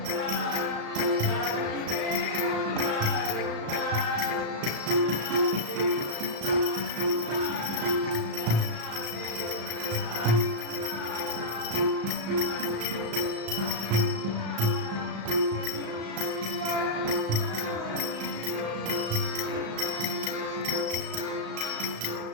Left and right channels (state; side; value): late; left; 35 ms